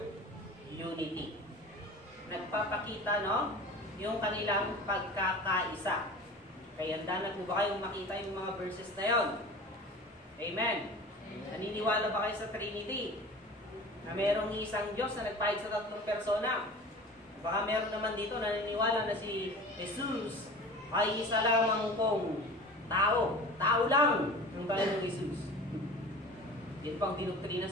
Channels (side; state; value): both; normal; correlation 0.38